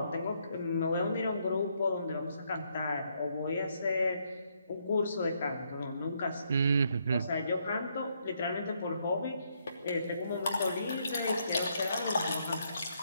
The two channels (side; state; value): both; inverted; correlation -0.74